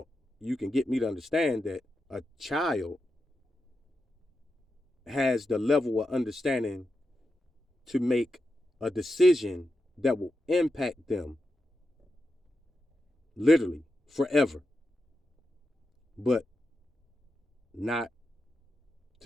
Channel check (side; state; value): both; normal; correlation 0.88